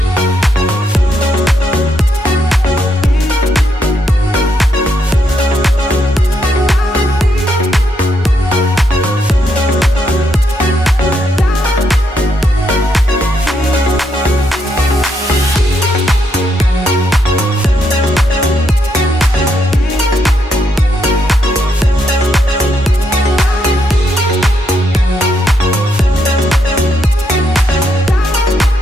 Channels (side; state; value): both; normal; correlation 0.77